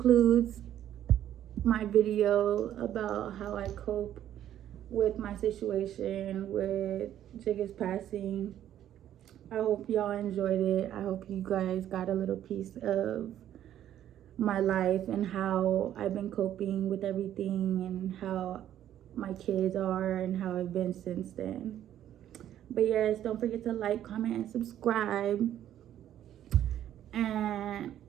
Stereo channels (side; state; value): left; quieter; 11.4 dB